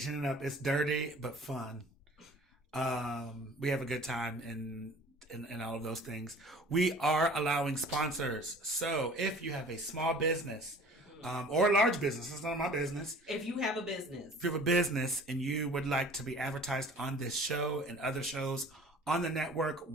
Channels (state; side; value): normal; both; correlation 0.47